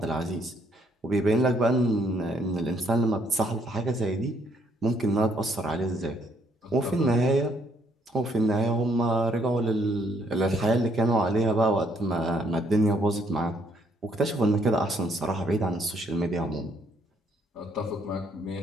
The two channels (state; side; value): normal; both; correlation 0.69